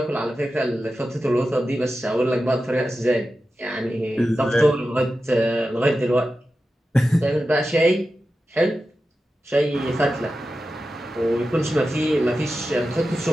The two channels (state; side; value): normal; both; correlation 0.92